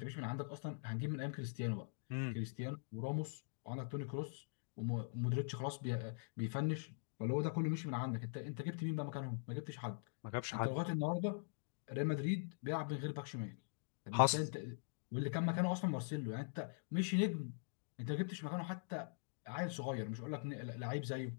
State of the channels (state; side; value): silent; right; digital silence